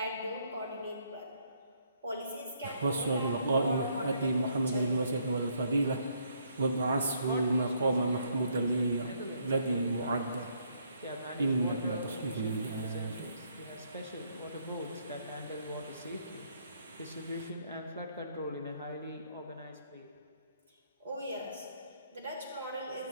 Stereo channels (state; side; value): inverted; both; correlation -0.70